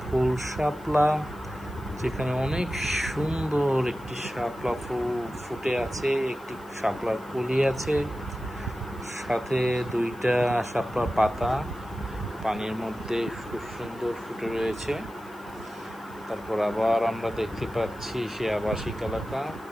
ফুল শাপলা, যেখানে অনেক সুন্দর একটি শাপলা ফুল ফুটে আছে, একটি শাপলার কলি আছে, সাথে দুইটা শাপলার পাতা পানির মধ্যে খুব সুন্দর ফুটে রয়েছে। তারপর আবার আমরা দেখতে পাচ্ছি সে আবাসিক এলাকা।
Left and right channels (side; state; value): left; noise; hiss, 27 dB below the sound